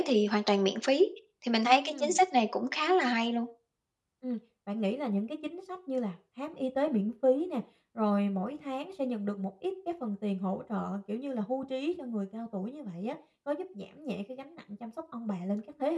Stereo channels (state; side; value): identical; both; correlation 1.00